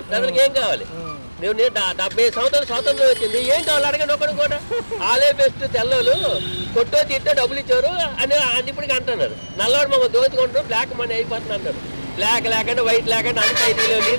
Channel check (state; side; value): inverted; both; correlation -1.00